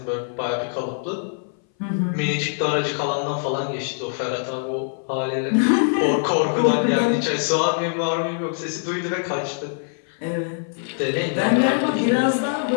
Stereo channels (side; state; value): right; silent; 59 dB below the other